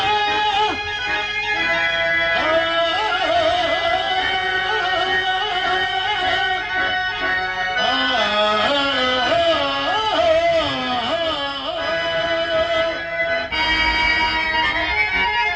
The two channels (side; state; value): both; identical; correlation 1.00